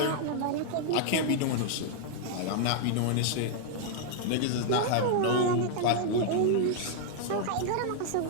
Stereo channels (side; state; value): both; different; correlation 0.00